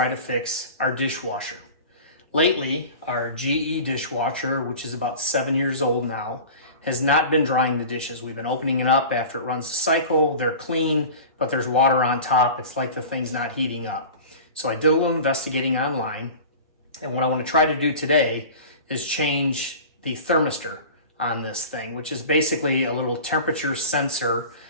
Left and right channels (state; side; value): inverted; both; correlation -0.37